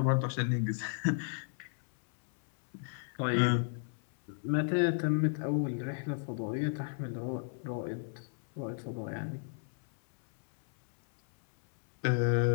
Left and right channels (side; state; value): right; silent; 56 dB below the other